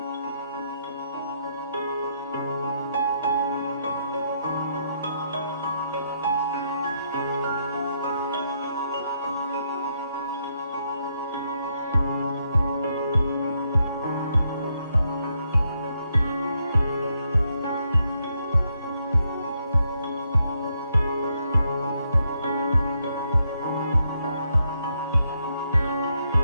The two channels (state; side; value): inverted; both; correlation -0.77